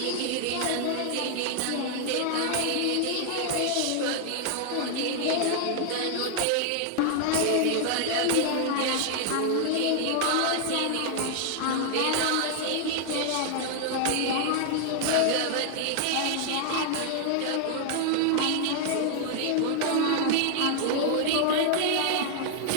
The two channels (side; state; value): both; different; correlation 0.00